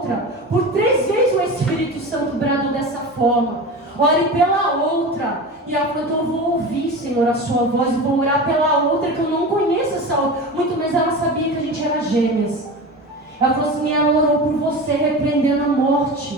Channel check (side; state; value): both; normal; correlation 0.29